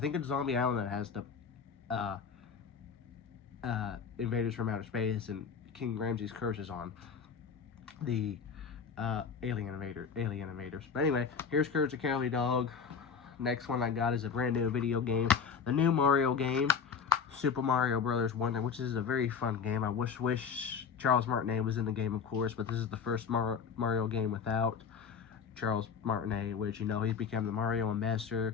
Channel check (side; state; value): right; quieter; 6.4 dB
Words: it's Zombie Island that has the uh, Invaders from Outer Space, and King Ramses' Curse is on the Alien Invaders. But anyway, here's Courage the Cowardly Dog. Next one I got is a brand new video game, the new Mario game, Super Mario Brothers Wonder, which is a very fun game. I wish Charles Martinet was in the game, of course, but this is the first Mario game without Charles Martinet, which, you know, he's become the Mario ambassador.